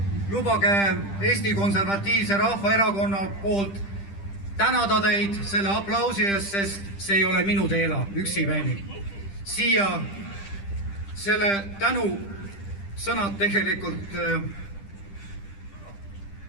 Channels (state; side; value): late; right; 10 ms